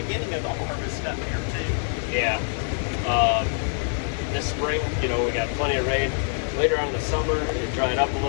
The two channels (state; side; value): silent; right; 61 dB below the other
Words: of the harvest up here too. Yeah. This spring, we got plenty of rain. Later on in the summer, it dried up a